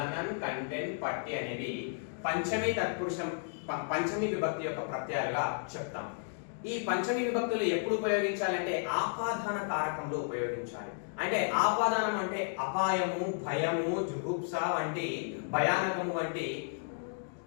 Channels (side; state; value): right; silent; digital silence